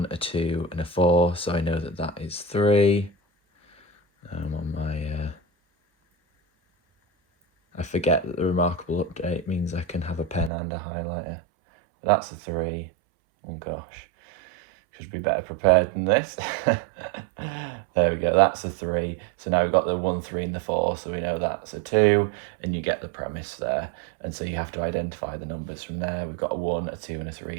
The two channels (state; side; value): drops out; left; at 10.5 s